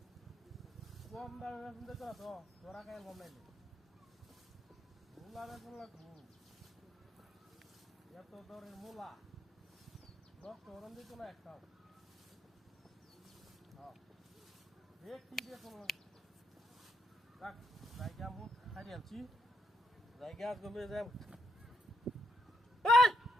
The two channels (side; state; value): both; normal; correlation 0.78